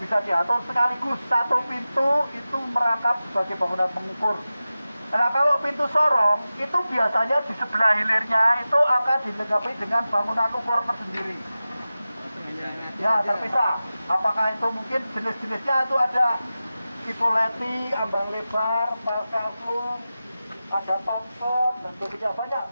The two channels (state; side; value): inverted; both; correlation -0.95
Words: bisa diatur sekaligus. Satu pintu itu merangkap sebagai bangunan pengukur. Nah kalau pintu sorong itu biasanya di sebelah hilirnya itu akan dilengkapi dengan bangunan ukur tersendiri. Ya terpisah. Apakah itu mungkin jenis-jenisnya itu ada tipoleti, ambang lebar, palkaflung, ada pampon dan sebagainya,